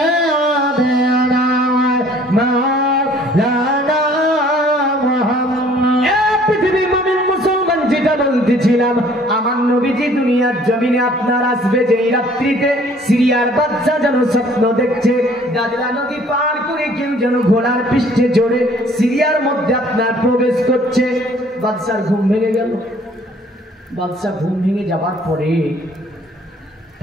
مولانا محمد। পৃথিবীর মুমিন মুসলমান যেটা বলতেছিলাম আমার নবীজি দুনিয়ার জমিনে আপনার আসবে যেই রাত্রিতে সিরিয়ার বাচ্চা যেন স্বপ্ন দেখছে দাজলা নদী পার করে কেউ যেন ঘোড়ার পৃষ্ঠে চড়ে সিরিয়ার মধ্যে আপনার প্রবেশ করছে। বাদশার ঘুম ভেঙে গেল। বাদশা ঘুম ভেঙে যাবার পরে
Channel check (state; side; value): normal; both; correlation 0.56